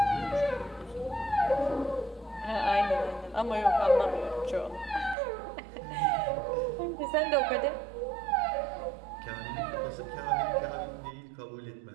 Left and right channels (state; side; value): drops out; left; at 5.2 s